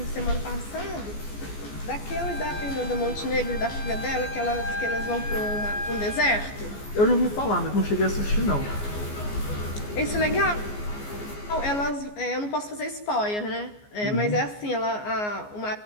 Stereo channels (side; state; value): right; late; 14 ms